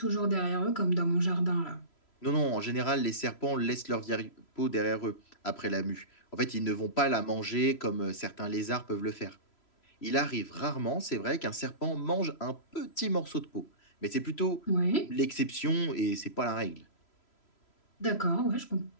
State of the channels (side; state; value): right; late; 3.0 ms